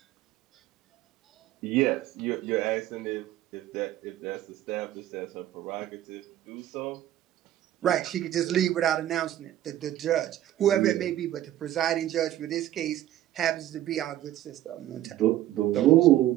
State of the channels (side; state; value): left; quieter; 13.2 dB